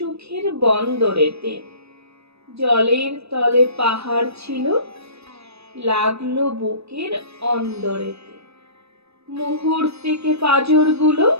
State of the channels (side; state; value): left; late; 0.78 ms